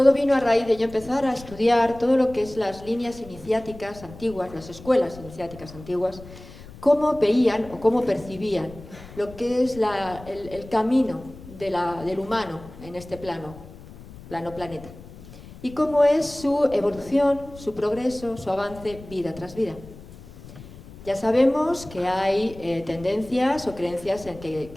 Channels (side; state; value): left; noise; rumble, 17 dB below the sound